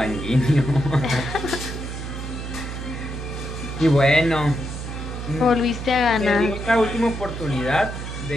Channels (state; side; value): noise; right; hum, 7 dB below the sound